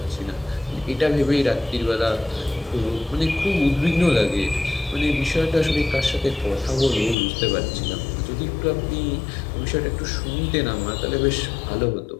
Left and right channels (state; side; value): drops out; right; at 7.2 s